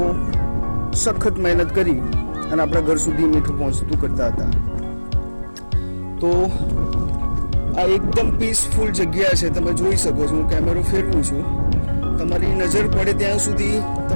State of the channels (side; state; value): both; inverted; correlation -1.00